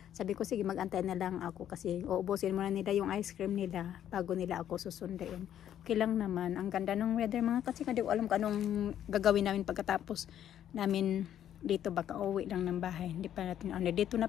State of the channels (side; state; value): right; quieter; 10.6 dB